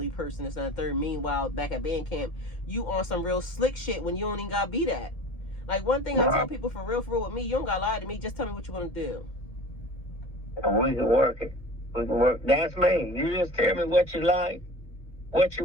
person, this and that third. Meanwhile, back at band camp, you on some real slick shit when you don't even got to be that. Like, one thing I tell people, for real with me, you don't got to lie to me. Just tell me what you want to do. We can work it. We can work. That's me. You just tell me what you like,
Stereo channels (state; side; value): late; right; 1.7 ms